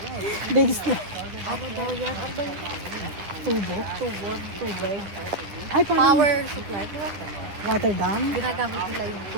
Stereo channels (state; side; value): late; left; 9.9 ms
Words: Big slide. Ano daw yan? Ano ba yun? Tubo. Tubig. Ay, parang Power supply. water dam. Ginagamit nila yung